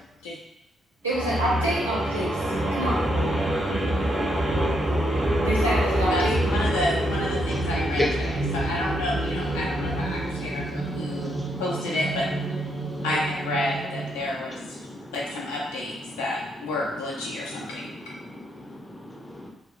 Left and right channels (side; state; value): both; normal; correlation 0.76